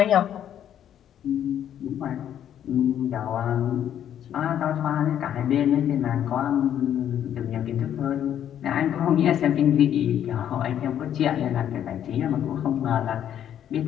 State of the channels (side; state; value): right; quieter; 10.2 dB